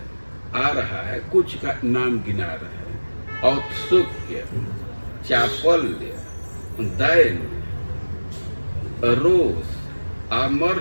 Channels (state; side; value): inverted; both; correlation -1.00